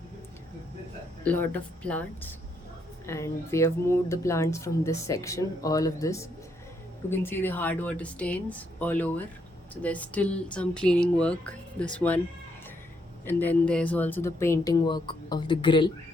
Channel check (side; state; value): both; normal; correlation 0.75